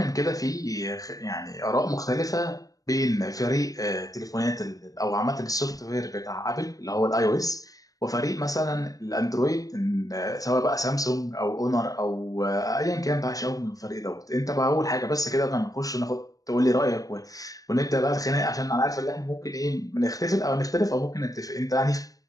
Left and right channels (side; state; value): right; late; 0.17 ms